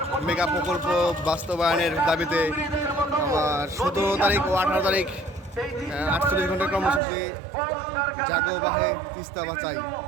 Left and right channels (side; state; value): left; drops out; at 7.0 s